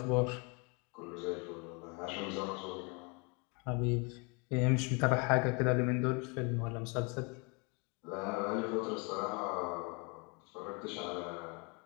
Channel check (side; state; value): right; quieter; 32.3 dB